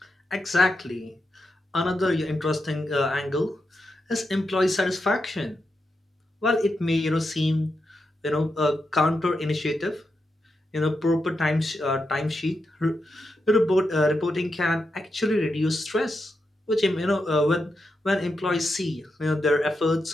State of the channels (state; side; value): normal; both; correlation 0.86